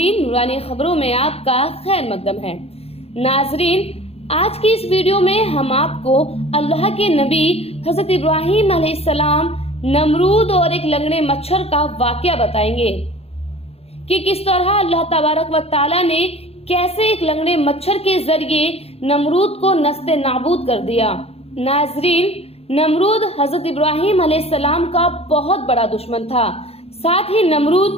نورانی خبروں میں آپ کا خیر مقدم ہے۔ ناظرین، آج کی اس ویڈیو میں ہم آپ کو اللہ کے نبی حضرت ابراہیم علیہ السلام، نمرود اور ایک لنگڑے مچھر کا واقعہ بتائیں گے کہ کس طرح اللہ تبارک و تعالیٰ نے کیسے ایک لنگڑے مچھر کے ذریعے نمرود کو نست نابود کر دیا۔ ناظرین، نمرود حضرت ابراہیم علیہ السلام کا بہت بڑا دشمن تھا، ساتھ ہی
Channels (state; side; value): late; right; 0.29 ms